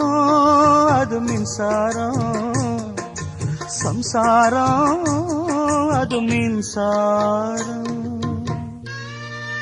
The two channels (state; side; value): identical; both; correlation 1.00